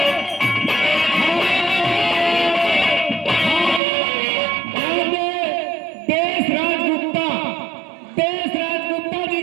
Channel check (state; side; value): drops out; left; at 3.8 s